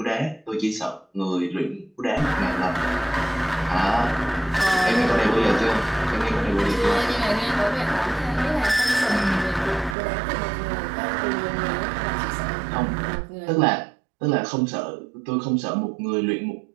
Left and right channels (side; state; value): left; drops out; at 10.0 s